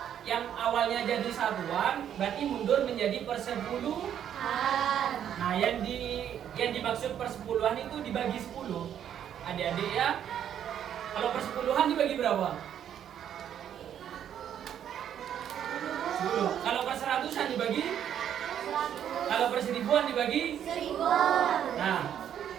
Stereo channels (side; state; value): left; quieter; 9.6 dB